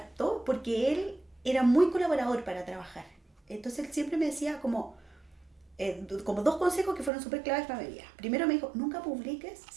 porque él era muy colaborador para trabajar. Entonces él siempre me decía como dos consejos que fueron súper claves para mi vida. Primero me dijo, nunca publiques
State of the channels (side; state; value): left; drops out; at 7.1 s